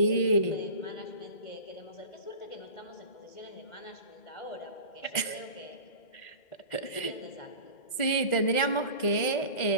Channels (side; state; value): right; late; 2.1 ms